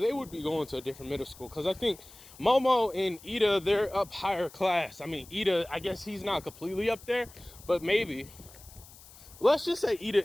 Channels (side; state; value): left; noise; hiss, 21 dB below the sound